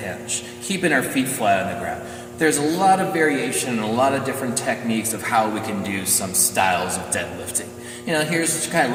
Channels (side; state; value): both; identical; correlation 1.00